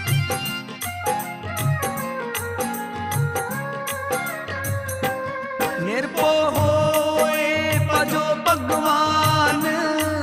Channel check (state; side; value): identical; both; correlation 1.00